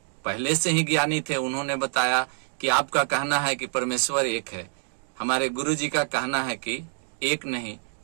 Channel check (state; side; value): silent; left; 58 dB below the other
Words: पहले से ही ज्ञानी थे, उन्होंने बताया कि आपका कहना है कि परमेश्वर एक है, हमारे गुरु जी का कहना है कि एक नहीं